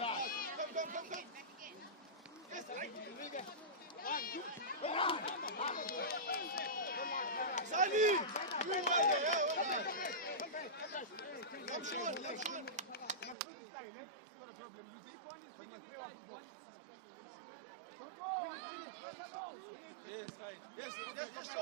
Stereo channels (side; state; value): left; drops out; at 13.4 s